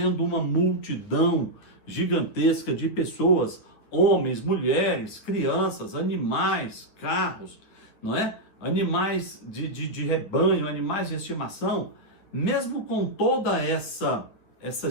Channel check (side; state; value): right; late; 9.6 ms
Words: uma multidão gigantesca de pessoas, homens, mulheres, crianças, animais, carros, não é? Animais de rebanho, animais de estimação, mesmo com toda essa